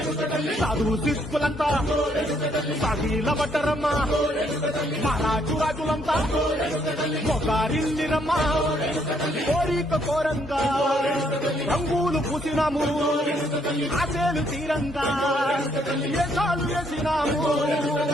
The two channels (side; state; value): both; normal; correlation 0.70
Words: సాధువు సిక్కులంతా సాగిల పట్టరమ్మా మహారాజు రాజులంతా మొగారిల్లిరమ్మా కోరిక కోరంగా రంగులు పూసినాము ఆశలు తీరంగా ఏసాలు వేసినాము